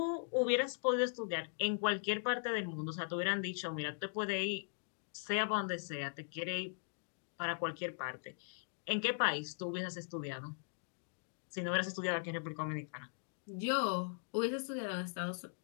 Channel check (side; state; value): right; silent; digital silence